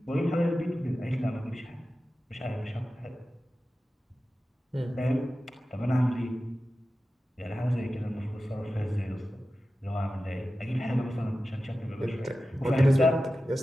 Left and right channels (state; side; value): normal; both; correlation 0.94